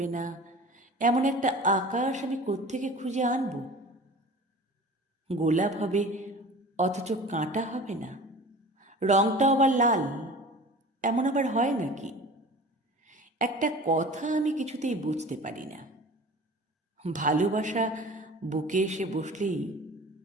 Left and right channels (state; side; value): normal; both; correlation 0.40